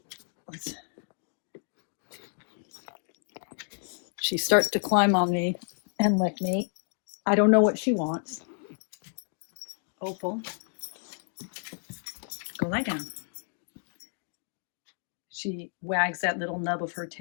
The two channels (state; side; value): silent; right; 58 dB below the other